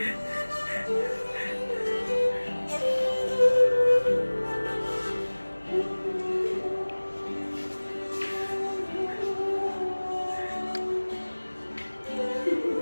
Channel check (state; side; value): inverted; both; correlation -1.00